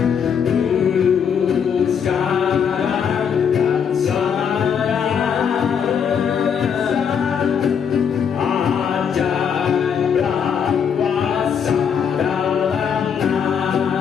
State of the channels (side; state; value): right; quieter; 7.4 dB